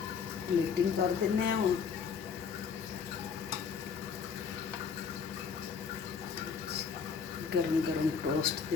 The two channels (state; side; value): quieter; right; 6.2 dB